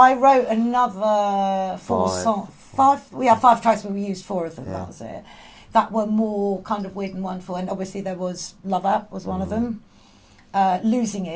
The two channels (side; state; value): both; identical; correlation 1.00